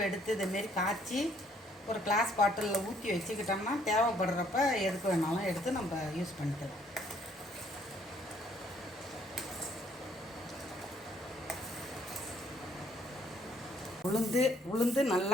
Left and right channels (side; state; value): both; normal; correlation 0.64